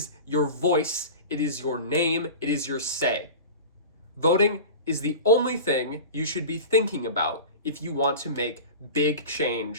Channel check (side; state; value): both; inverted; correlation -0.33